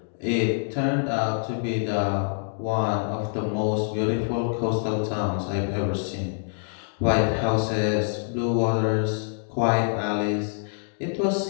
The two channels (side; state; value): right; silent; digital silence